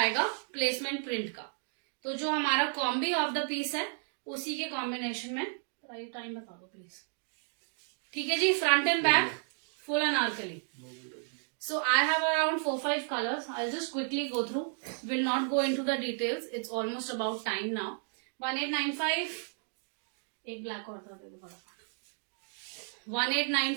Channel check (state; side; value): silent; left; 56 dB below the other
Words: प्लेसमेंट प्रिंट का. तो जो हमारा कॉम्बी ऑफ द पीस है उसी के कॉम्बिनेशन में. टाइम बता दो प्लीज. ठीक है जी. Front and back full Anarkali. So I have around 4-5 colors. I'll just quickly go through. Will not go into the details. It's almost about time now. 1895. एक black और दे दो फटाफट.